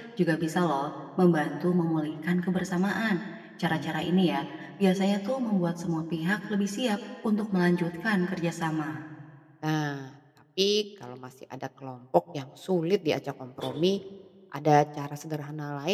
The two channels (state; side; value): identical; both; correlation 1.00